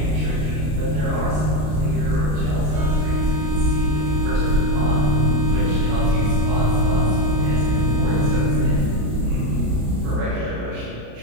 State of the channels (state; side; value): late; left; 33 ms